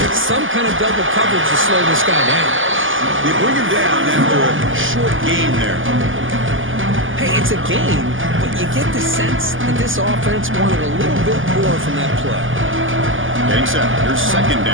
Some kind of double coverage to slow this guy down. They bring him down after a short gain there. Hey, it's a gain, but you get the sense that this offense wanted a little bit more from that play. Getting set. Here's second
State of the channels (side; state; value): left; late; 0.58 ms